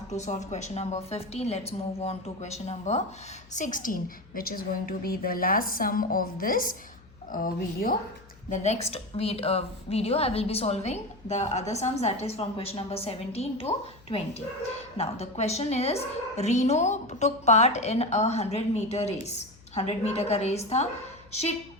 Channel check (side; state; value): left; noise; hum, 24 dB below the sound